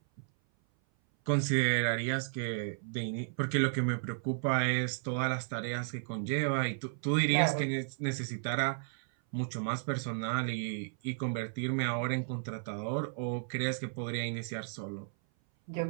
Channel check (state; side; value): silent; left; 55 dB below the other